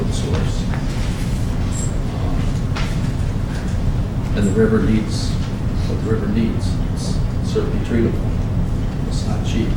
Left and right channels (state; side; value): identical; both; correlation 1.00